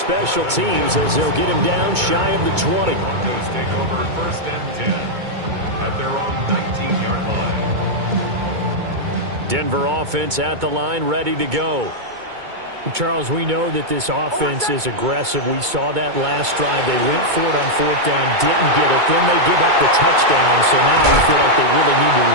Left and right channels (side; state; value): left; late; 2.2 ms